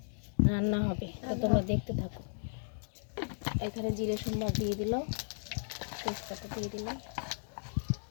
রান্না হবে। তো তোমরা দেখতে থাকো। এখানে জিরে সম্বার দিয়ে দিল, তেজপাতা দিয়ে দিল,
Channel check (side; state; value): right; silent; digital silence